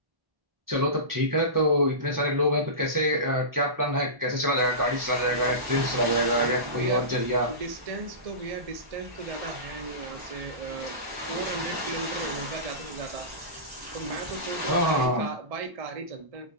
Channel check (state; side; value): late; left; 1.1 ms